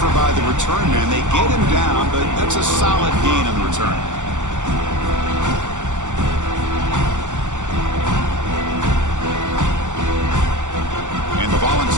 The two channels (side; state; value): left; late; 0.85 ms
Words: by the return man. They get him down, but that's a solid gain on the return. And the